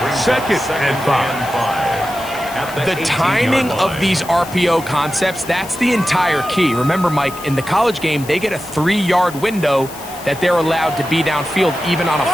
2nd and 5. The timing of these RPO concepts, that's the entire key. Remember, Mike, in the college game, they get a 3-yard window that they're allowed to be downfield even on a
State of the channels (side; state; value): left; noise; hiss, 16 dB below the sound